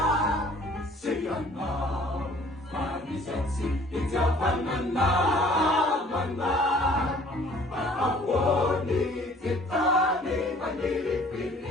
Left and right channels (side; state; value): both; normal; correlation 0.54